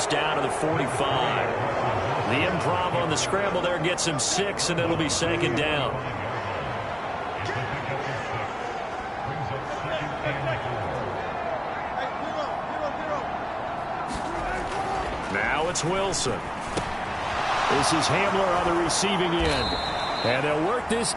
down to the 45. The improv on the scramble there gets him 6, and it'll be second down. Now it's Wilson. This is Hamler on the receiving end. And they'll work this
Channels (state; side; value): identical; both; correlation 1.00